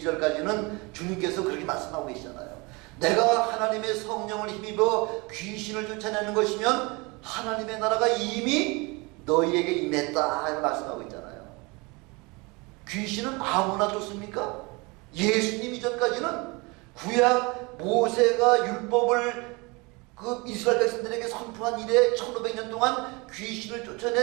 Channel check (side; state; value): left; quieter; 26.8 dB